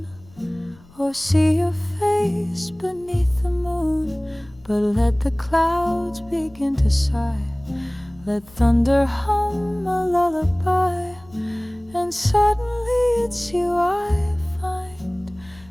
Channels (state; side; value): noise; left; rumble, 25 dB below the sound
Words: or see your face beneath the moon. But let the clouds begin to sigh, let thunder hum a lullaby, and suddenly it's you I find